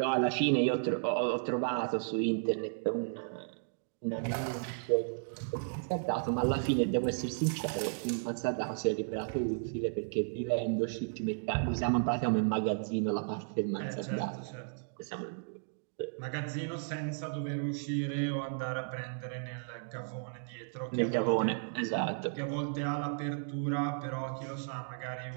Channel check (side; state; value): left; silent; digital silence